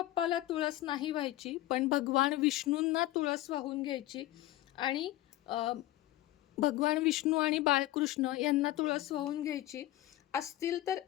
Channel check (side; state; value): right; quieter; 15.6 dB